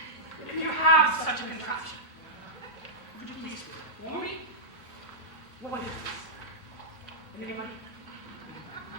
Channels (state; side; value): normal; both; correlation -0.11